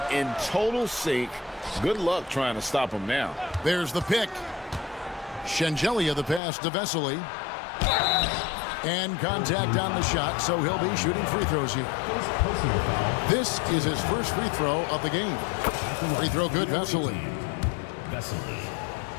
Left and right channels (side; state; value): right; drops out; at 6.4 s